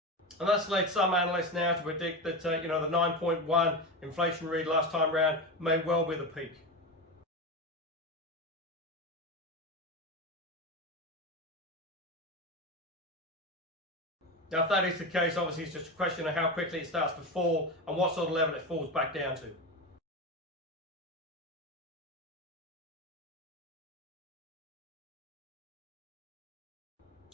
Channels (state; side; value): normal; both; correlation 0.20